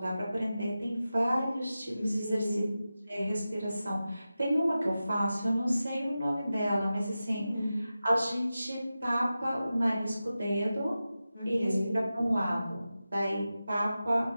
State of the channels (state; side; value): inverted; both; correlation -0.94